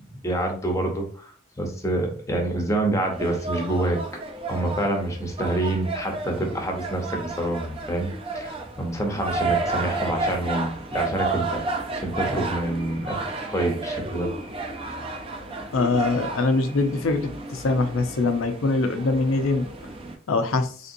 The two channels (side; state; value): both; normal; correlation 0.50